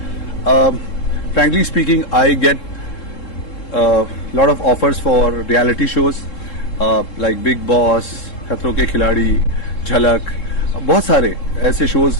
frankly speaking, I get lot of offers for reality shows like Big Boss, खतरों के खिलाड़ी, झलक, बहुत सारे ऐसे shows.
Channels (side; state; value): right; late; 3.7 ms